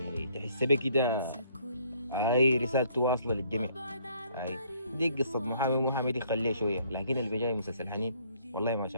تحس بيه كده، هاي رسالته واصلة للجميع. هاي دي قصة محامي دي خليه شوية، لكن اللي بيجاي مسلسل حنين والله ما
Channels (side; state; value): both; inverted; correlation -0.64